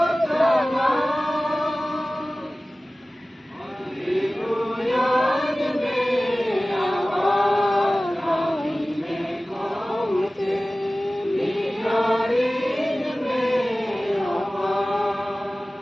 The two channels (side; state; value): both; normal; correlation 0.97